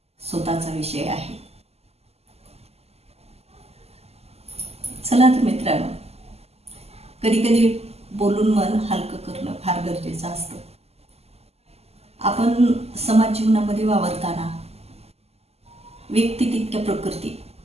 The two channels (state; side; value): late; left; 0.30 ms